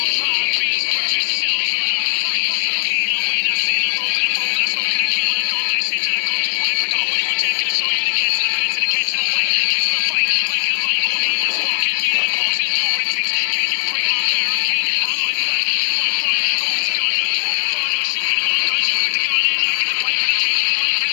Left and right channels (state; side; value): silent; right; 59 dB below the other